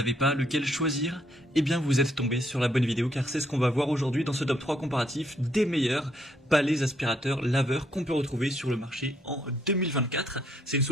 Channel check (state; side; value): normal; both; correlation 0.71